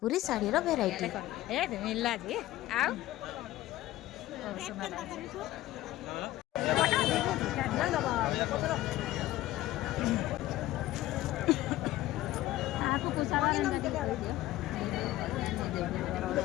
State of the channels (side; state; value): right; quieter; 15.8 dB